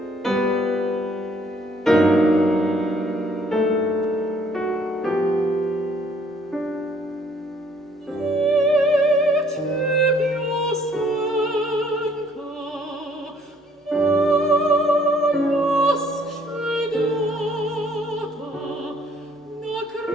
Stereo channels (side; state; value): both; normal; correlation 0.62